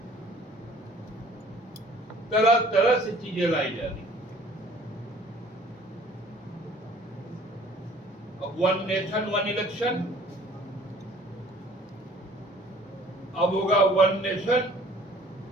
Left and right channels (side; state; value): both; normal; correlation 0.53